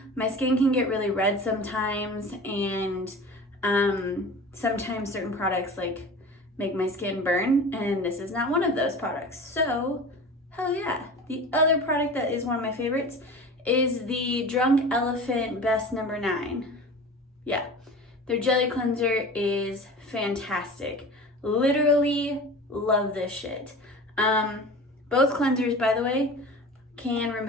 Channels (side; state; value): both; normal; correlation 0.36